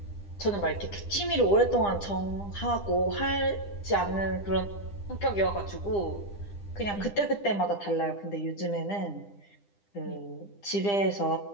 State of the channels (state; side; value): late; right; 9.9 ms